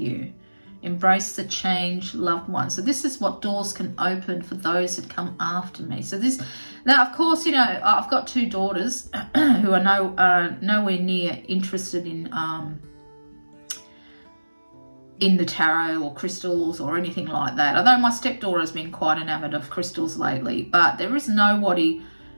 Embrace the change, loved one. So this is what doors can open for those that come after me. So now of course, I've got two daughters who are nowhere near interested in the tarot or crystals or anything like that. Although my stepdaughter has been quite enamored of crystals lately, but there is nobody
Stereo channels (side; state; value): both; inverted; correlation -1.00